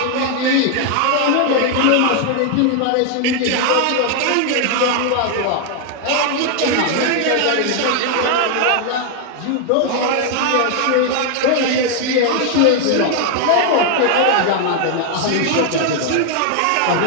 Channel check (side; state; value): both; different; correlation 0.00